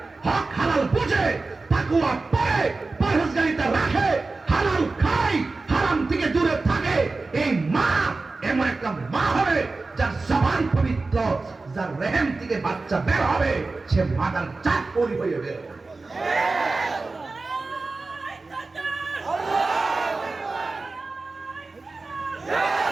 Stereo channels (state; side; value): quieter; left; 3.6 dB